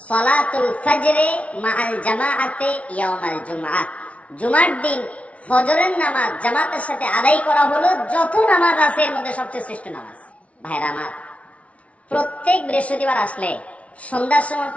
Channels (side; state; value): right; late; 0.064 ms